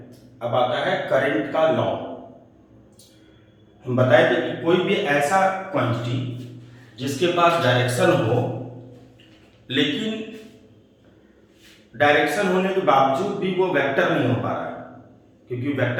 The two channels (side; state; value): both; identical; correlation 1.00